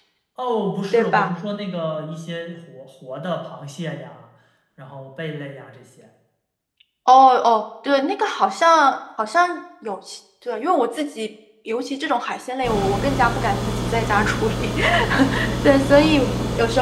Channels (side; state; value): both; identical; correlation 1.00